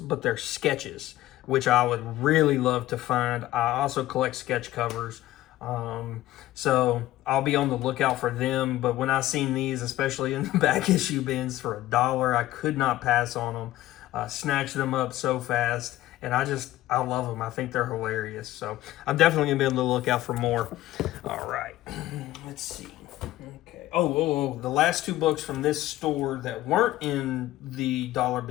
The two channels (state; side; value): quieter; right; 15.4 dB